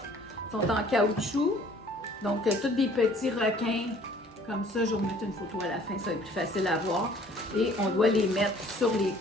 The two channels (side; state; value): both; normal; correlation 0.55